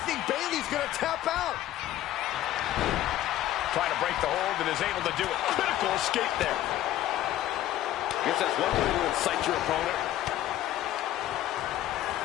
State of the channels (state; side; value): quieter; right; 13.4 dB